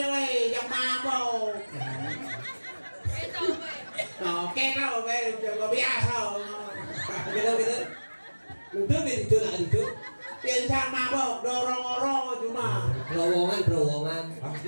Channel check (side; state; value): both; inverted; correlation -1.00